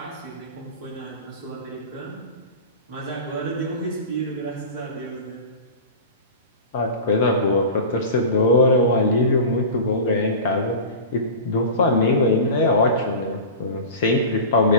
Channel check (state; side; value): inverted; both; correlation -0.32